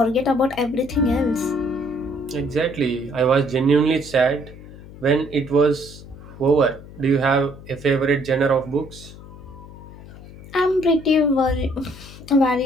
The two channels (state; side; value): noise; left; hum, 17 dB below the sound